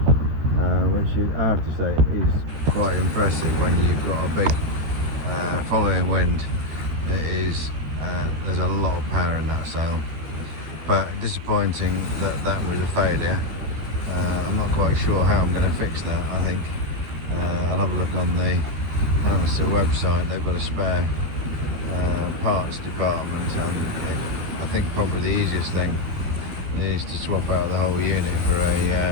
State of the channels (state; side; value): late; left; 13 ms